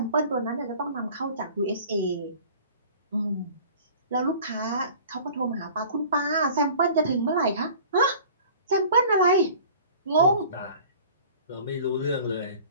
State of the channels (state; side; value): inverted; both; correlation -0.46